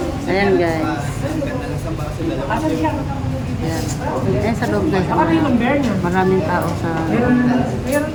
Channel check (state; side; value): identical; both; correlation 1.00